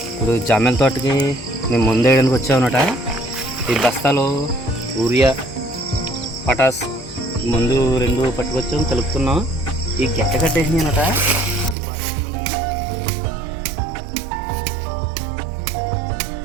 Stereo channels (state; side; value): drops out; left; at 11.8 s